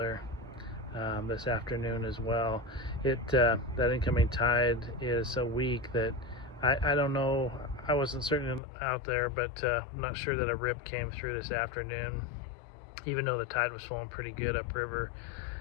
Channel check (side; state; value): right; drops out; at 8.6 s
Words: this afternoon as well. That incoming tide is so weak that I don't know. I wasn't certain out there, but I'm not sure that a rip came through this afternoon, even though the tide was flowing pretty good upriver.